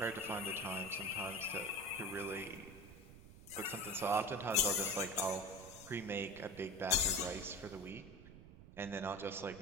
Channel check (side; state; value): right; noise; rumble, 17 dB below the sound